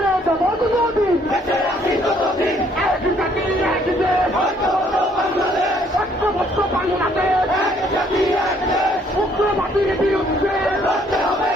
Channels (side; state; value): both; normal; correlation 0.64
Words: দেবো ততদিন বেঁচে আছি যতদিন এক জাতি এক দেশ ঐক্যবদ্ধ বাংলাদেশ ঐক্যবদ্ধ বাংলাদেশ এক জাতি এক দেশ উগ্রবাদীর বিরুদ্ধে লড়তে হবে